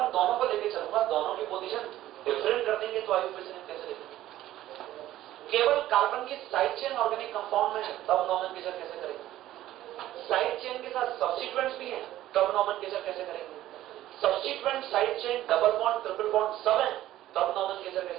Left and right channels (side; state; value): left; quieter; 14.1 dB